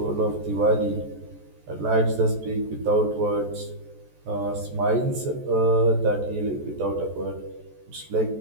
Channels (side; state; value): left; late; 14 ms